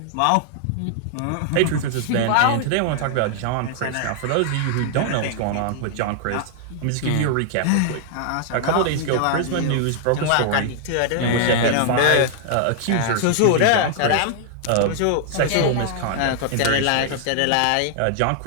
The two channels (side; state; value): both; different; correlation 0.00